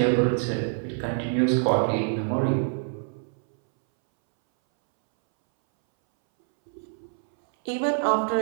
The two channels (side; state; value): left; silent; 61 dB below the other